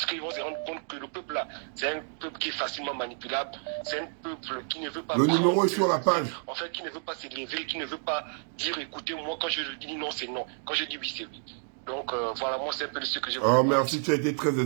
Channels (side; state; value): left; silent; 58 dB below the other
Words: qu'ils vont se rendre compte que le peuple là, c'est un peuple qui est facilement manipulable, c'est un peuple qui ne veut pas... Le numéro est sur la page. En fait, qui ne veut pas s'élever, qui ne veut pas dire écoutez, moi quand je dis non, c'est non. Quand je dis oui, c'est oui. Donc voilà, moi c'est un peu ce que je veux. Oh, merci, tu as été très